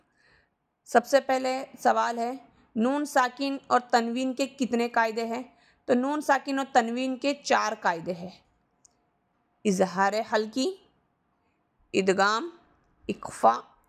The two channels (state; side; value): identical; both; correlation 1.00